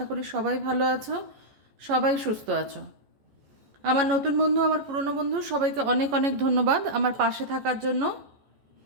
করি সবাই ভালো আছো, সবাই সুস্থ আছো। আমার নতুন বন্ধু, আমার পুরনো বন্ধু, সবাইকে অনেক অনেক ধন্যবাদ আমার পাশে থাকার জন্য,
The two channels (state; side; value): late; left; 14 ms